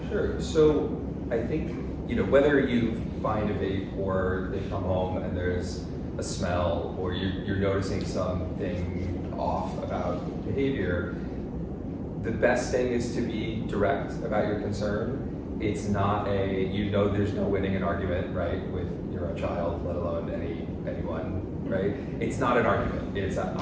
Sure. So I think, whether you find a vape or they come home and there's a smell, or you're noticing something off about behavior, the best thing is to be direct about your concern. It's not there's no winning an argument, right, with your own child, let alone anyone, right? It's not an argument. It's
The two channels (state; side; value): identical; both; correlation 1.00